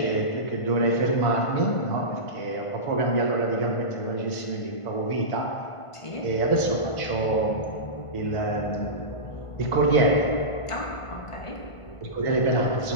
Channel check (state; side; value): late; right; 1.5 ms